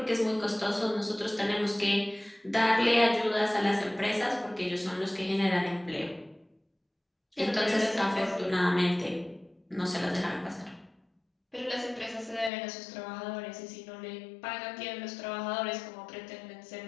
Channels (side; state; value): right; drops out; at 12.5 s